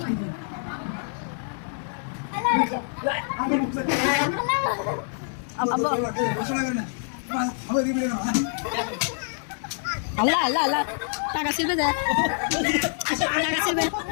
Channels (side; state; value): right; silent; 61 dB below the other